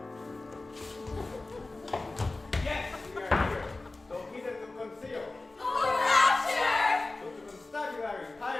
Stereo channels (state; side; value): quieter; right; 3.2 dB